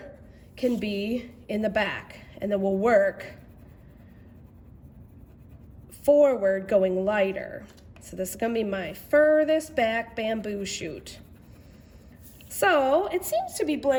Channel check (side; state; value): both; identical; correlation 1.00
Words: can be in the back, and then we'll work forward going lighter. So this is going to be my furthest back bamboo shoot. So it seems to be